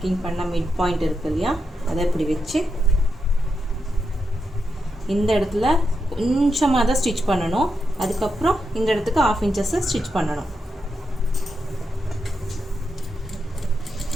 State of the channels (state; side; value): normal; both; correlation 0.85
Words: பண்ண மிட் பாயிண்ட் இருக்கு இல்லையா, அதை இப்படி வச்சு இந்த இடத்துல கொஞ்சமாக தான் ஸ்டிச் பண்ணணும். அதுக்கப்புறம் இந்த இடத்துக்கு 1/2 இன்ச்சஸ் ஸ்டிச் பண்ணணும்.